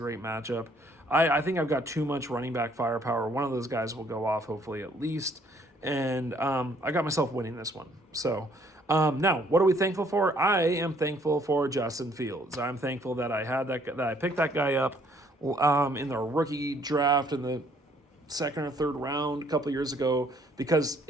matchup. I think I've got too much running back firepower. One of those guys will go off, hopefully, at least. And I got myself winning this one. So now, what are we thankful for? I am thankful for Justin Fields. I'm thankful that I picked that guy up in the rookie draft in the second or third round a couple years ago because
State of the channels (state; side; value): normal; both; correlation 0.63